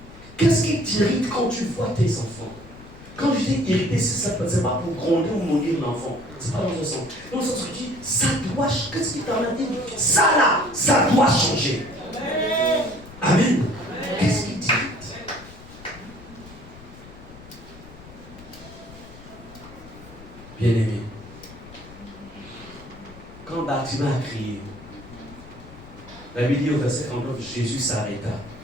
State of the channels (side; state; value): left; noise; rumble, 18 dB below the sound